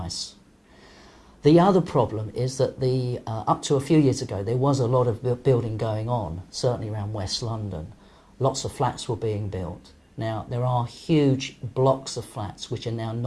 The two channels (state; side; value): identical; both; correlation 1.00